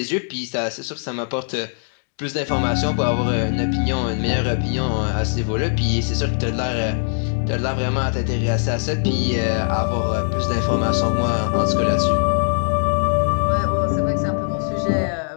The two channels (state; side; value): silent; right; 65 dB below the other